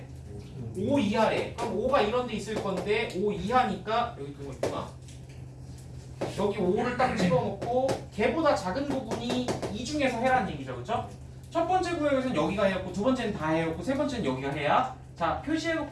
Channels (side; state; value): both; identical; correlation 1.00